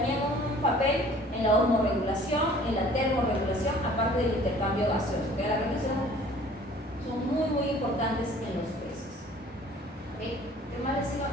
un papel en la osmorregulación, en la termorregulación, aparte del intercambio gaseoso. ¿Okay? Las branquias son muy, muy importantes en los peces. ¿Okay? ¿Qué más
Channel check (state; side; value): normal; both; correlation 0.51